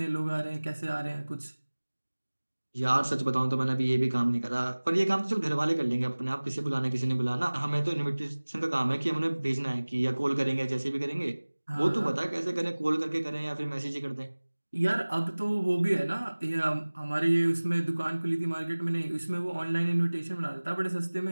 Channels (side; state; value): both; inverted; correlation -1.00